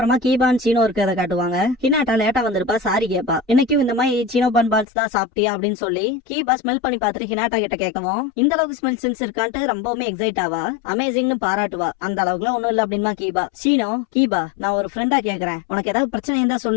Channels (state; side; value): drops out; right; at 4.9 s